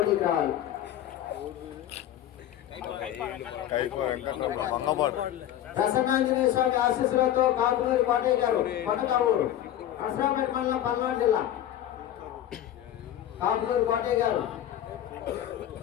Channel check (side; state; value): right; quieter; 11.7 dB